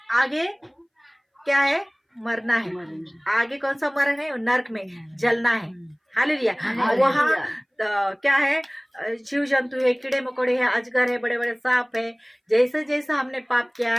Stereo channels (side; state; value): both; identical; correlation 1.00